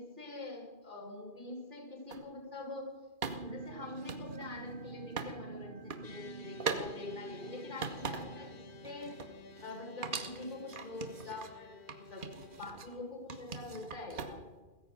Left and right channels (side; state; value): left; late; 2.4 ms